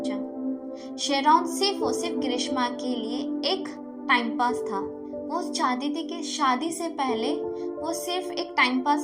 शेरॉन सिर्फ और सिर्फ ग्रीष्मा के लिए एक टाइम पास था। वो चाहती थी कि शादी से पहले वो सिर्फ एक टाइम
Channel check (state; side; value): identical; both; correlation 1.00